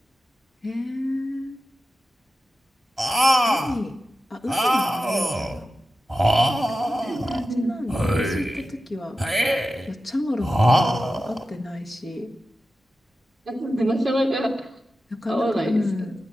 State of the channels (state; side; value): normal; both; correlation 0.92